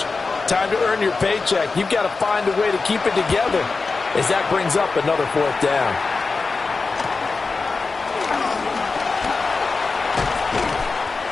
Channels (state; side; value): quieter; right; 4.2 dB